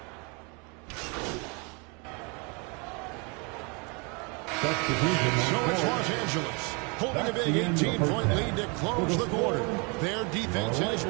So it's Los Angeles holding a big 18-point lead to close the quarter. Their defense has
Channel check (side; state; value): left; quieter; 31.9 dB